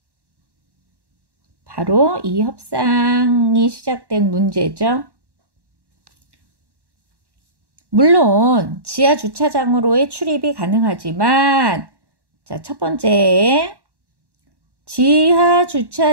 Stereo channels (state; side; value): late; left; 1.1 ms